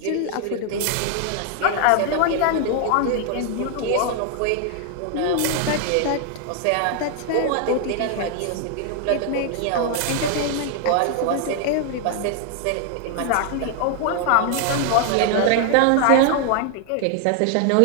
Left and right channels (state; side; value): different; both; correlation 0.00